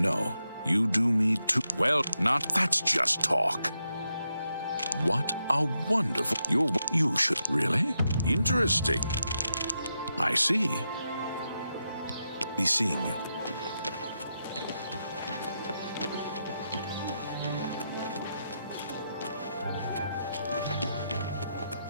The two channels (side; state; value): both; inverted; correlation -0.85